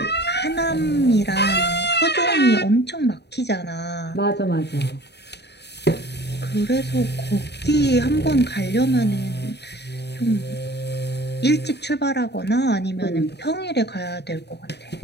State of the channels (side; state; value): right; late; 0.49 ms